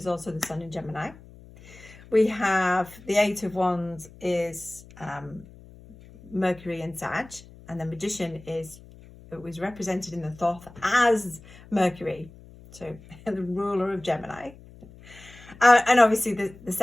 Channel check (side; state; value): left; noise; hum, 21 dB below the sound